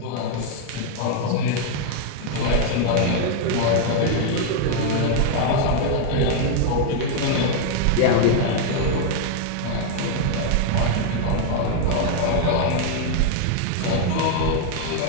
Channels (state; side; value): different; both; correlation 0.00